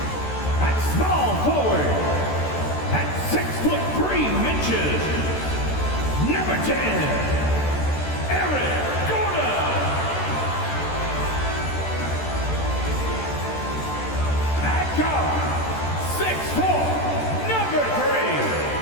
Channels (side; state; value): right; late; 13 ms